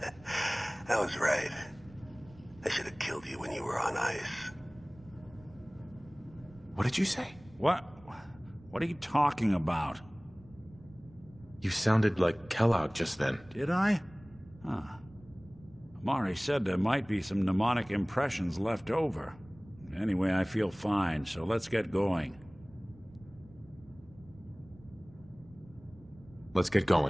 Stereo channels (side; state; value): right; noise; rumble, 23 dB below the sound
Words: I was right. I should have killed you when you were on ice. What did you say? What? What are you talking about? You sounded like Kellogg just then. Did I? Huh. Amari said there might be some mnemonic impressions left over. Anyway, I feel fine, so let's get going. Let's get